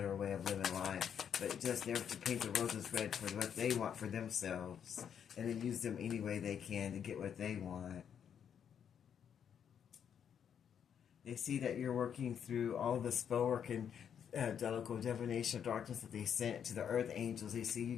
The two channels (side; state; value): right; quieter; 8.3 dB